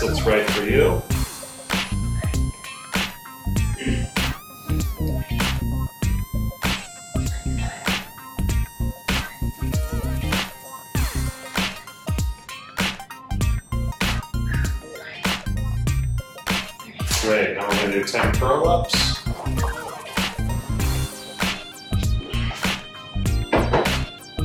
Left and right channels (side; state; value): both; identical; correlation 1.00